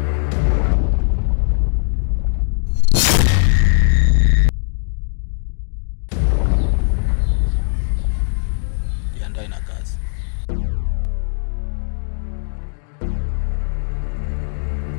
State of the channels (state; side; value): silent; right; digital silence